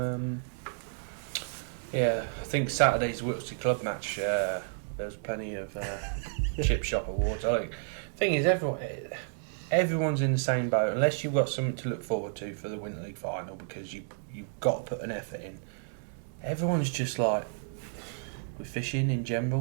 Yeah, I think Saturday's Wiltshire Club match, there was plenty of chip shop awards. I think the thing is, everyone's in the same boat unless you've got something to look forward to for the Winter League final, because you've got to put an effort in. Everyone's just like, we're fishing in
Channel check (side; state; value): left; silent; digital silence